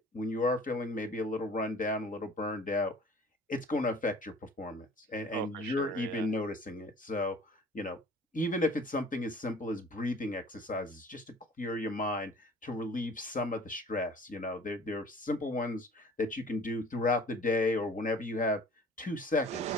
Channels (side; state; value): both; normal; correlation 0.48